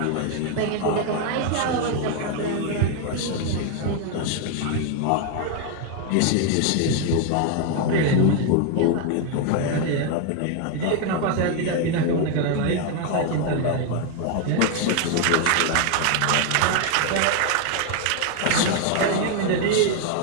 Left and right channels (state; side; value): different; both; correlation 0.00